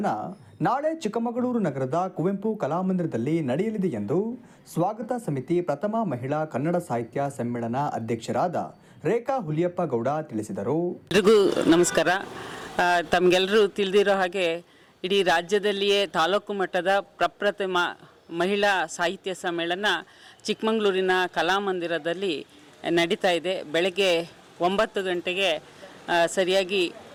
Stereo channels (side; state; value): both; identical; correlation 1.00